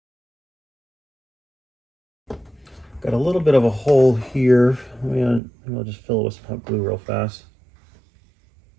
Got a little bit of a hole here. Maybe I'll just fill it with some hot glue real fast.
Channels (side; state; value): left; drops out; at 5.4 s